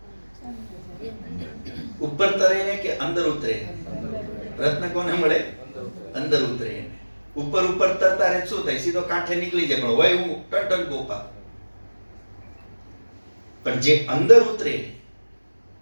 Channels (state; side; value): inverted; both; correlation -1.00